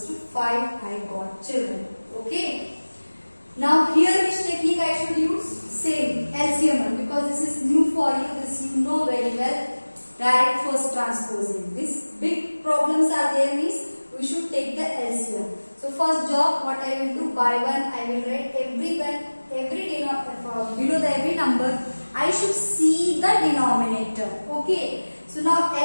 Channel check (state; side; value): inverted; both; correlation -1.00